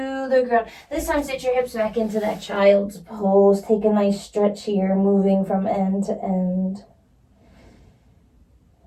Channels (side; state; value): both; identical; correlation 1.00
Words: the ground. This time sit your hips back into that child's pose. Take a nice stretch here, moving from end to end.